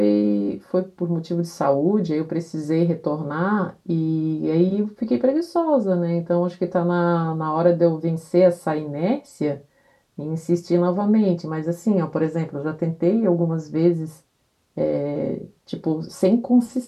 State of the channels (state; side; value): identical; both; correlation 1.00